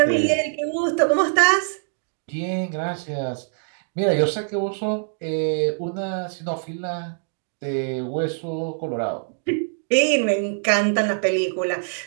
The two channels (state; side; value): silent; left; digital silence